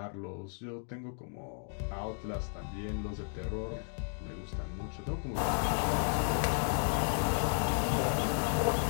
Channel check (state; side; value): silent; right; 55 dB below the other